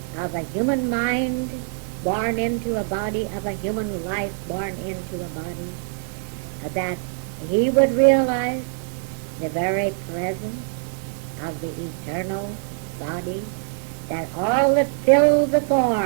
of a human mind born into a body, of a human life born into a body, that he would realize the very presence of the eternal body, that all that filled the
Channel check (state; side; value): silent; left; 63 dB below the other